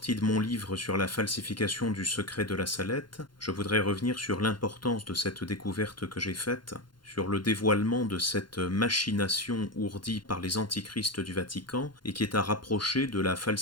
de mon livre sur la falsification du secret de la Salette, je voudrais revenir sur l'importance de cette découverte que j'ai faite, sur le dévoilement de cette machination ourdie par les antichrists du Vatican et qui est à rapprocher de la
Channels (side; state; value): right; late; 0.72 ms